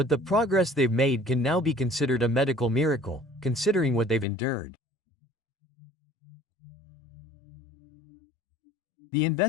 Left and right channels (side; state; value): right; drops out; at 4.2 s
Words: the progress they've made can now be considered a medical miracle, considering what they've endured. The